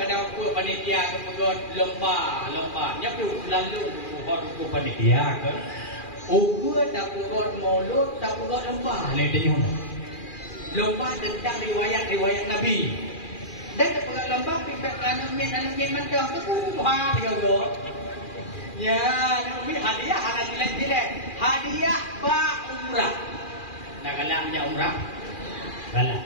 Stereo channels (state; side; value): late; right; 2.4 ms